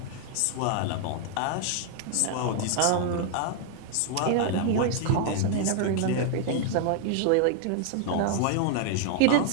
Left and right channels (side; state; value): both; different; correlation 0.00